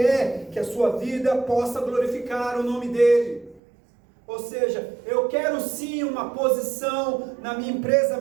que a sua vida possa glorificar o nome dEle. Ou seja, eu quero sim uma posição na minha empresa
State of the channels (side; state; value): left; drops out; at 3.6 s